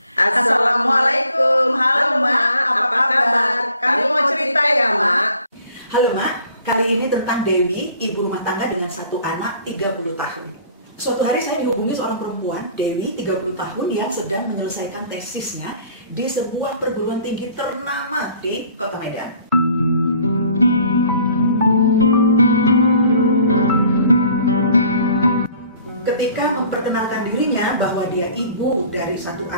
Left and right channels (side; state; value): both; inverted; correlation -0.53